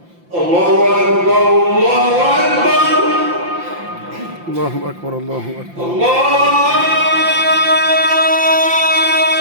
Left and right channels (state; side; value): late; left; 5.8 ms